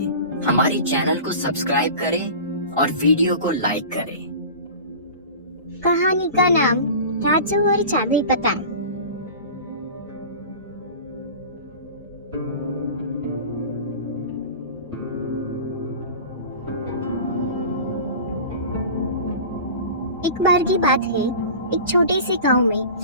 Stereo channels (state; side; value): inverted; both; correlation -0.36